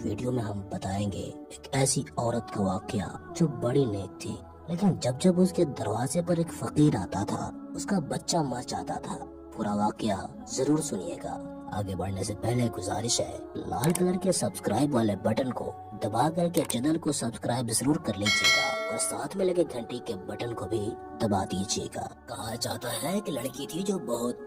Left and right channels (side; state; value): both; identical; correlation 1.00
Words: ویڈیو میں ہم بتائیں گے ایک ایسی عورت کا واقعہ جو بڑی نیک تھی، لیکن جب اس کے دروازے پر ایک فقیر آتا تھا اس کا بچہ مر جاتا تھا۔ پورا واقعہ ضرور سنیے گا۔ آگے بڑھنے سے پہلے گزارش ہے، لال کلر کے سبسکرائب والے بٹن کو دبا کر کے چینل کو سبسکرائب ضرور کر لیجیے گا اور ساتھ میں لگے گھنٹی کے بٹن کو بھی دبا دیجیے گا۔ کہا جاتا ہے کہ لڑکی تھی جو